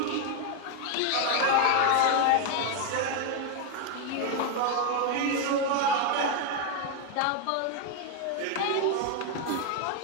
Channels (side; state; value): both; different; correlation 0.01